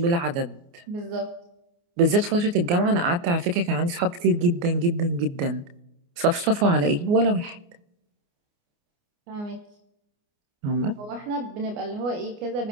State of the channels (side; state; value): left; late; 29 ms